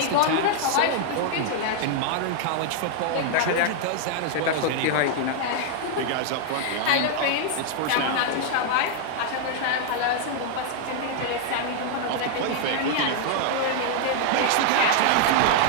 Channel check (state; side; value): different; both; correlation 0.00